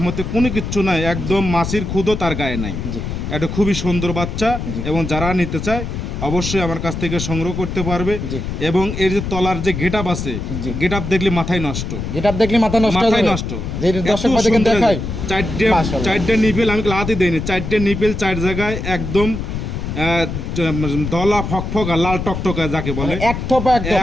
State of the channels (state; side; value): noise; left; rumble, 5 dB below the sound